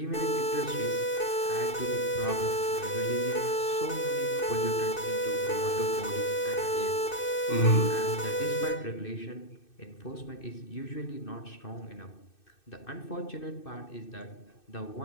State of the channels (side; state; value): right; late; 2.6 ms